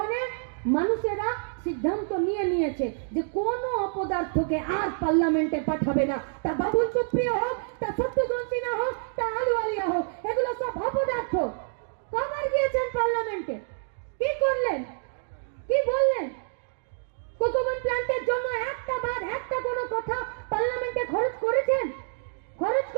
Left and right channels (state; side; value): silent; left; digital silence